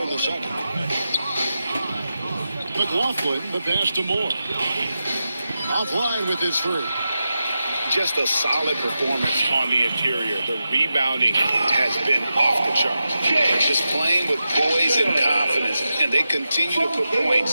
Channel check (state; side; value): inverted; both; correlation -0.90